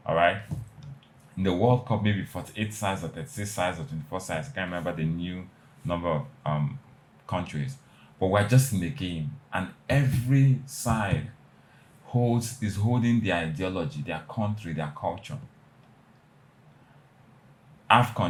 All right? In the World Cup, maybe 48 sides or 36 sides or 24 sides. I can't remember the new number of countries. But we're just in the game, and every side is holding their ideology, their country, their culture.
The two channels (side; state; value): both; identical; correlation 1.00